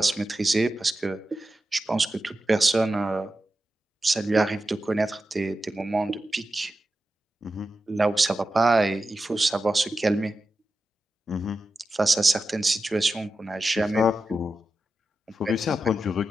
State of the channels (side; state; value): both; normal; correlation 0.91